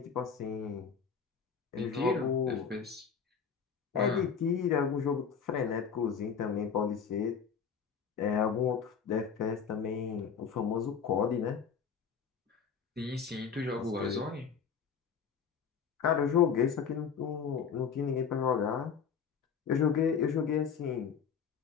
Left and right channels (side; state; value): right; quieter; 6.8 dB